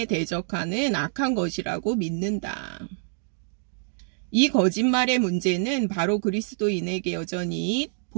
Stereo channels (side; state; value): left; silent; 61 dB below the other